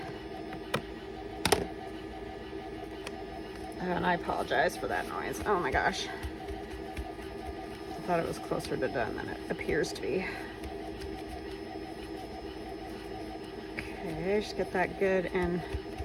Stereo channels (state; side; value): identical; both; correlation 1.00